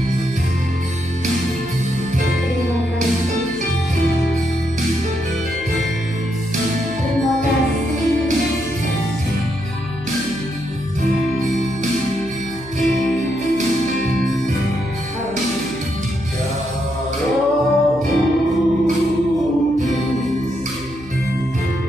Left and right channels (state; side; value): noise; left; hum, 18 dB below the sound